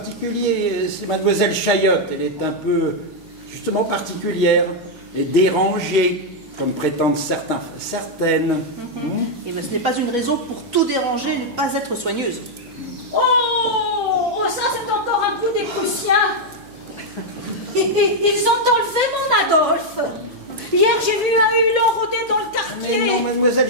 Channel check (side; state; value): right; noise; hum, 26 dB below the sound